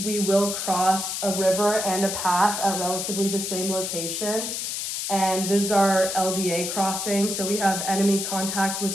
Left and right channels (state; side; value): noise; left; hiss, 3 dB below the sound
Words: will cross a river and a path at relatively the same location. And this is our LDA crossing, so we have enemy contact,